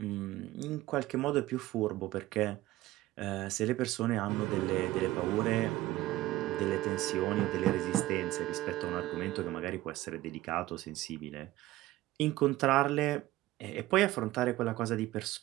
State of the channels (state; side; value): quieter; left; 16.8 dB